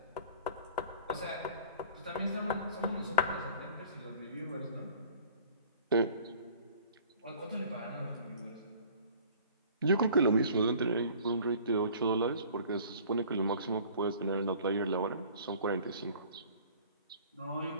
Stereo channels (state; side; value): inverted; both; correlation -0.50